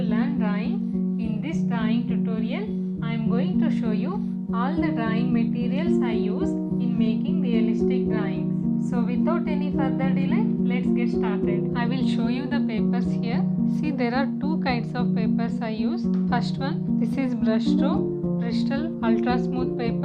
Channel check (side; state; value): both; identical; correlation 1.00